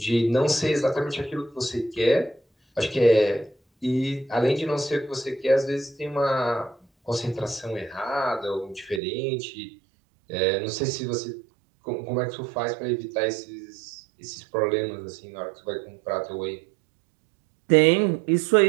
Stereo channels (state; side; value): drops out; left; at 9.0 s